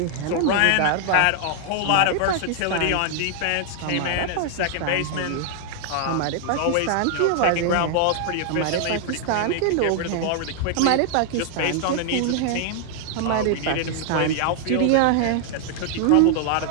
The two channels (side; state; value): both; different; correlation 0.00